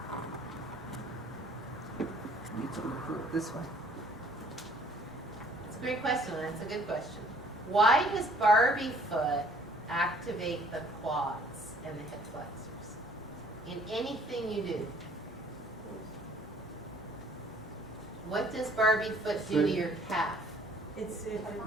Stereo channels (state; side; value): normal; both; correlation 0.58